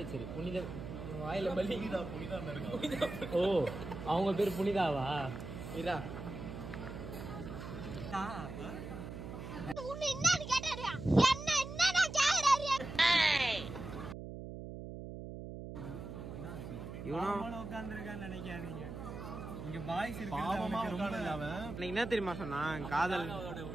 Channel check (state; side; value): noise; right; hum, 9 dB below the sound